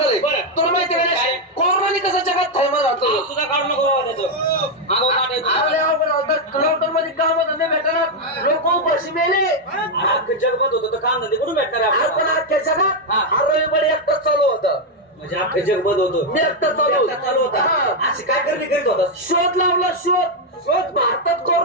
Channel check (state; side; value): normal; both; correlation 0.02